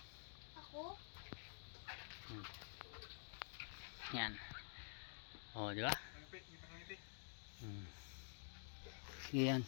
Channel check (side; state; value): right; silent; digital silence